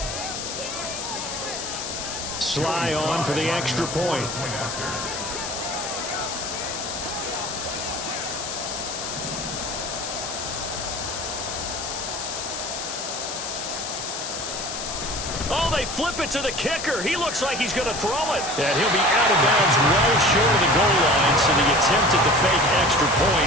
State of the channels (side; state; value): left; noise; hiss, 6 dB below the sound